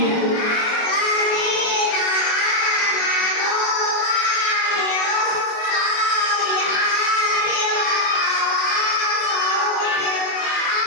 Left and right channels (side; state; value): right; late; 24 ms